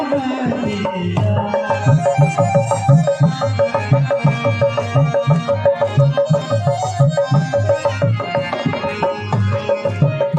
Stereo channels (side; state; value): both; identical; correlation 1.00